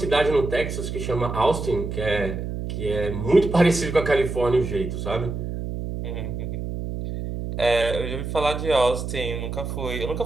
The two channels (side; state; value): right; noise; hum, 5 dB below the sound